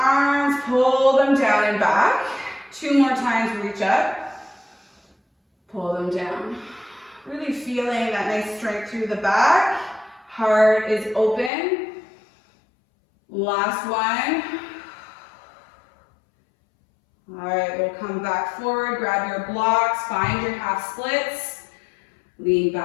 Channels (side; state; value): right; drops out; at 11.5 s